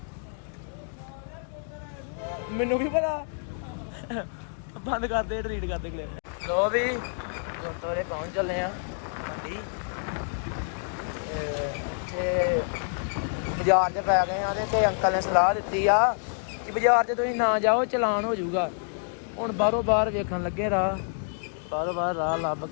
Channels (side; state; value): right; silent; 59 dB below the other